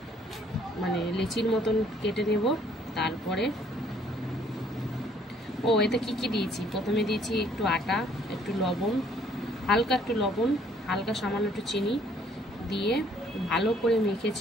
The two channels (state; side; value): normal; both; correlation 0.62